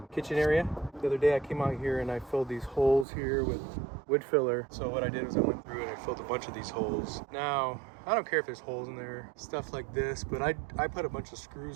kitchen area. The other day I came out here and I filled these holes here with wood filler. So what I did was I went through and I filled a bunch of these holes. Now, I don't care if there's holes in there, stuff like this, but I put a bunch of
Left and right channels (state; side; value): drops out; left; at 3.1 s